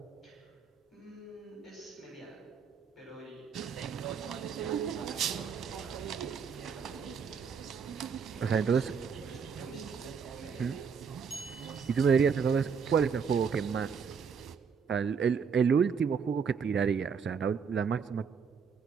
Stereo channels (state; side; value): quieter; left; 6.2 dB